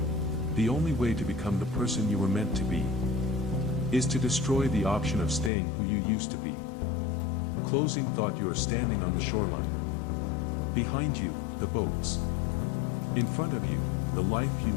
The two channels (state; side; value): drops out; right; at 5.5 s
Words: The only way to become the person you were meant to be is to destroy the option of staying who you used to be. Closing thought: you are standing on the shoreline. Behind you, the boats. In front of you, the life you